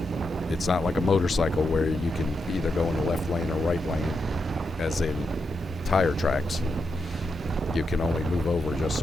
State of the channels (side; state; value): both; normal; correlation 0.85